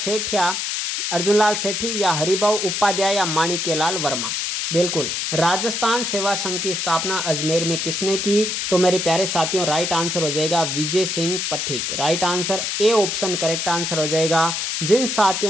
अर्जुनलाल सेठी या हरिभाऊ उपाध्याय या माणिक्यलाल वर्मा? बिल्कुल राजस्थान सेवा संघ की स्थापना अजमेर में किसने की? तो मेरे प्यारे साथियों राइट आंसर हो जाएगा Vijay Singh Pathik. Right answer A option correct answer हो जाएगा। जिन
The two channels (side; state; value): left; noise; hiss, 1 dB below the sound